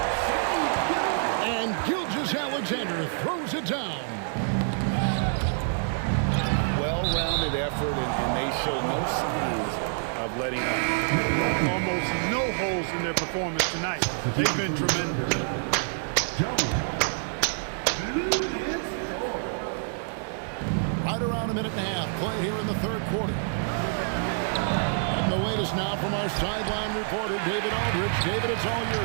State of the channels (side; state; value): left; silent; digital silence